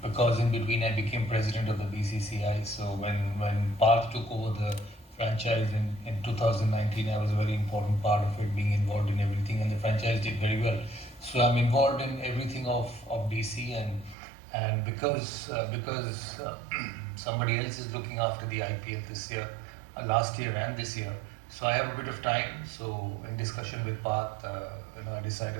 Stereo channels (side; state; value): left; drops out; at 14.2 s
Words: because in between I became president of the BCCI. So when Parth took over the franchise in 2019, I was a very important part of it, being involved in everything, and the franchise did very well. So I'm involved in everything of DC, and because somebody else is looking after the IPL this year, last year and this year, so I have a bit of time. So in discussion with Parth, I